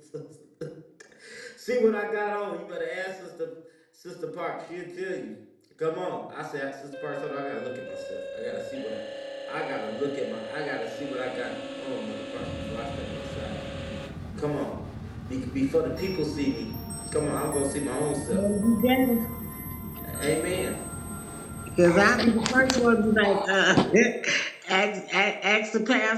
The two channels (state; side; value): identical; both; correlation 1.00